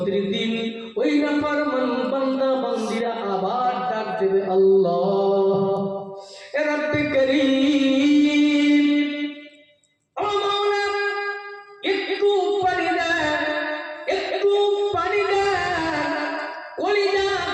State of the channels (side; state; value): both; identical; correlation 1.00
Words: দিন ওই নাফরমান বান্দা বান্দিরা আবার ডাক দেবে, আল্লাহ রব্বে করিম, ও মাওলা একটু পানি দেন, একটু পানি দেন। কলিজা